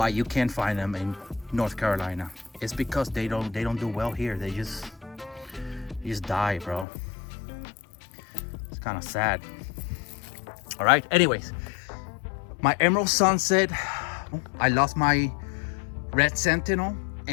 you can't find them in North Carolina. It's because they don't do well here. They just die, bro. It's kind of sad. All right, anyways, my emerald sunset, I lost my red sentinel,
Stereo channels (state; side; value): drops out; right; at 6.9 s